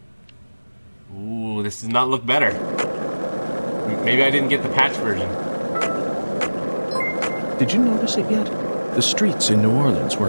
Ooh, this does not look better. Maybe I didn't get the patch version. Did you notice it yet? The streets in New Orleans were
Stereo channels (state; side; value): inverted; both; correlation -1.00